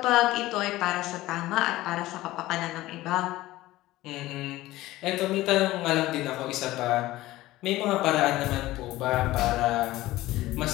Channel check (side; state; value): right; quieter; 17.0 dB